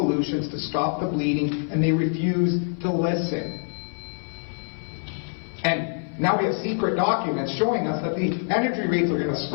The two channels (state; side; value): silent; right; 57 dB below the other